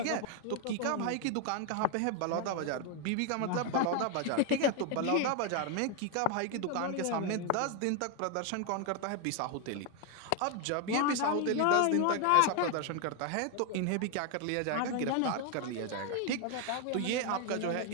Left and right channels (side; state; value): both; different; correlation 0.01